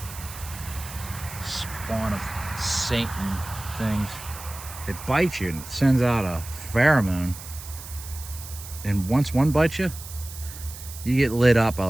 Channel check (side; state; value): right; noise; hiss, 13 dB below the sound